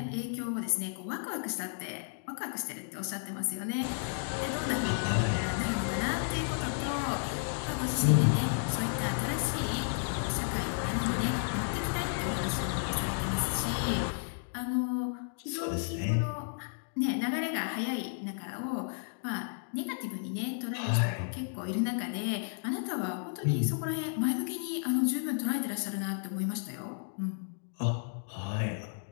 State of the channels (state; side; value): silent; right; digital silence